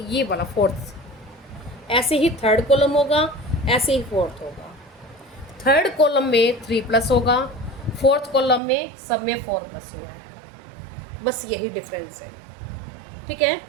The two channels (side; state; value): left; drops out; at 8.6 s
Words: फोर्थ, ऐसे ही थर्ड कॉलम होगा, ऐसे ही फोर्थ होगा। थर्ड कॉलम में 3 प्लस होगा, फोर्थ कॉलम में सब में 4 प्लस हुआ है, बस यही डिफरेंस है। ठीक है,